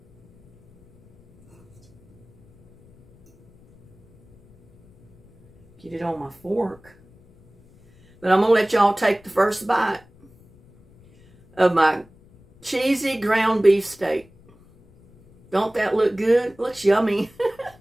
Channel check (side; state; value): left; noise; rumble, 28 dB below the sound